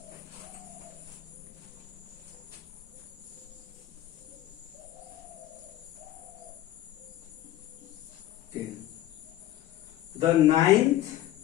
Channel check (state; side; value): quieter; right; 13.9 dB